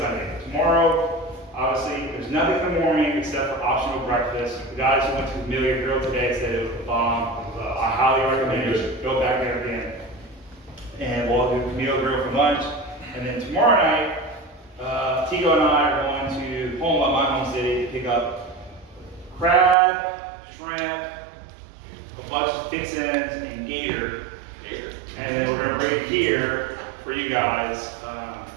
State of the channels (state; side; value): drops out; left; at 19.8 s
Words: Tomorrow, obviously, there's nothing in the morning except for optional breakfast. The guys who went to the Familiar Grill today said it was a bomb. I highly recommend you go back there again. And we'll do the Camille Grill for lunch. And then tomorrow night, Tigo and I are going to my home city, to pick up crab, shrimp, a bunch of fixins, and gator. And then we're going to bring it here for you guys.